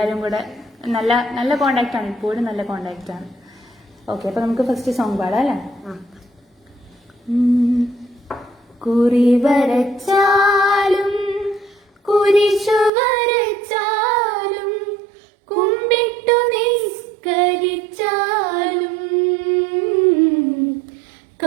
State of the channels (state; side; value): drops out; left; at 12.9 s